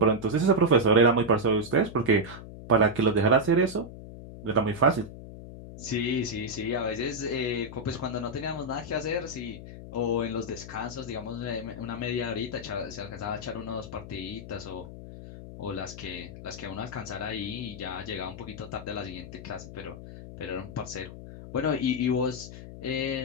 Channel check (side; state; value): left; noise; hum, 13 dB below the sound